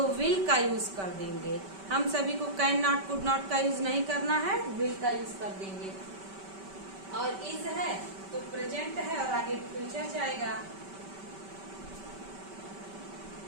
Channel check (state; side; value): late; left; 5.2 ms